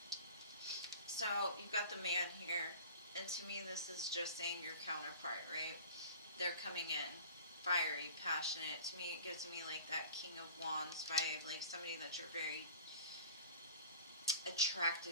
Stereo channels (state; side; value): inverted; both; correlation -0.42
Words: So, you've got the man here. And to me, this is just saying your counterpart, right? They're coming in. Fiery, passionate. To me, it gives me like that King of Wands vibe. Like somebody that you're very